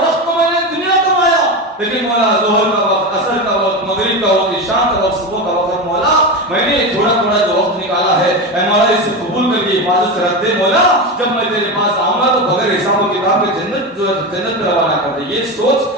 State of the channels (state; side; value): normal; both; correlation 0.19